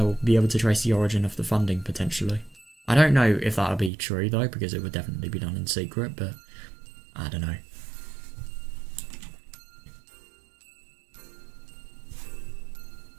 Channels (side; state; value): left; drops out; at 3.9 s